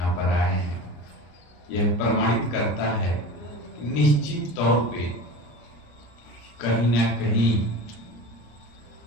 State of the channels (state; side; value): late; right; 34 ms